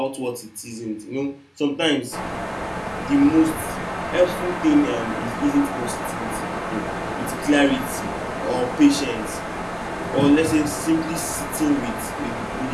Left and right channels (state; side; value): identical; both; correlation 1.00